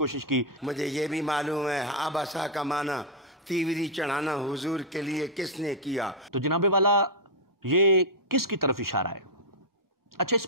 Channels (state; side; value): normal; both; correlation -0.03